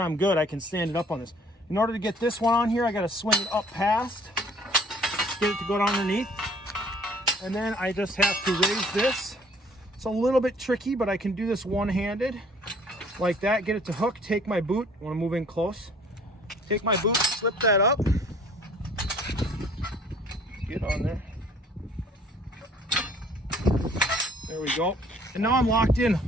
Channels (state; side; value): normal; both; correlation 0.55